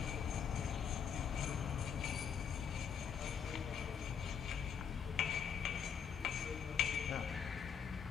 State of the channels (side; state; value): right; quieter; 7.3 dB